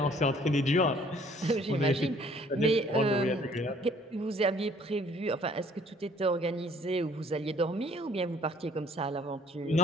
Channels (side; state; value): both; normal; correlation 0.58